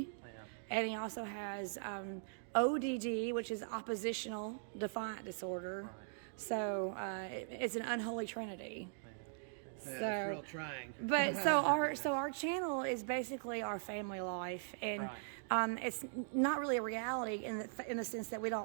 Yeah. and he also has ODD, which is oppositional defiant disorder. Right. So it's an unholy trinity. Yeah, it's real trying. But so our channel is basically our family life, and Right. it's not really a reality in the sense that we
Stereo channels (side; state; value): left; silent; digital silence